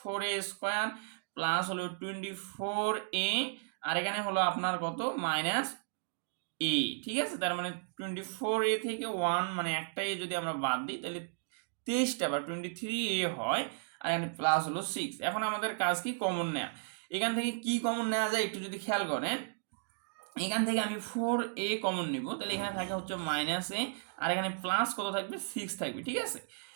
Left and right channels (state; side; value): silent; left; digital silence